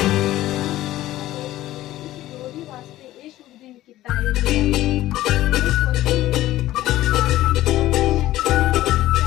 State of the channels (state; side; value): quieter; right; 15.2 dB